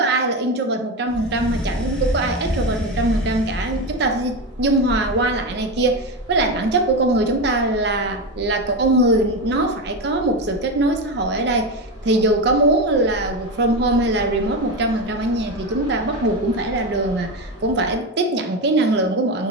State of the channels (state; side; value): normal; both; correlation 0.17